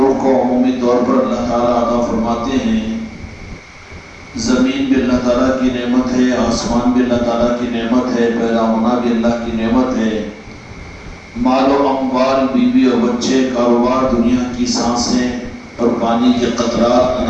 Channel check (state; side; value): identical; both; correlation 1.00